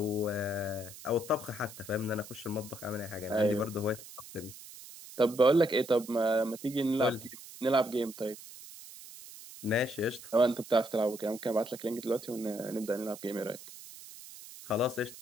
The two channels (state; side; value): noise; right; hiss, 16 dB below the sound